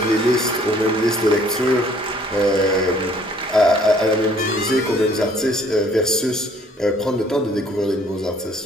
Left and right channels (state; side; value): normal; both; correlation 0.59